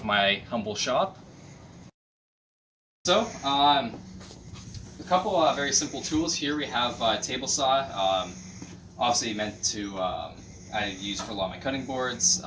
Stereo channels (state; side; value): identical; both; correlation 1.00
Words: my humble shop. So, a couple very simple tools here. We have a table saw, obviously meant to I use for a lot of my cutting boards,